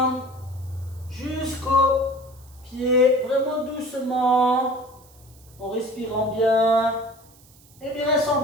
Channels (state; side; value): noise; right; hiss, 27 dB below the sound